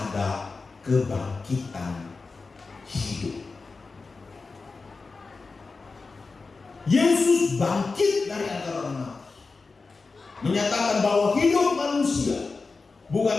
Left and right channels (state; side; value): quieter; right; 4.1 dB